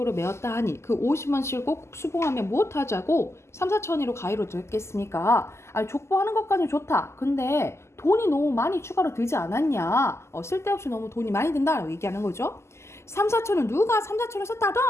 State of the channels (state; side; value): late; right; 0.13 ms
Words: 메었다 하니 그 50원씩을 꼭 수봉하면 무엇하자고 3, 4천이로 가위로 됐겠습니까? 아니, 족보하는 것까지는 좋다. 근데 돈이 너무 많이 추가로 들지 않았냐? 쓸데없이 너무 돈이 많이 든다라고 얘기하는 거죠. 3, 4천은 누가 3, 4천을